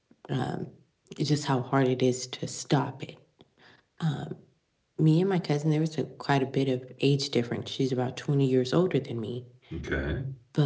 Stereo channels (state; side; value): identical; both; correlation 1.00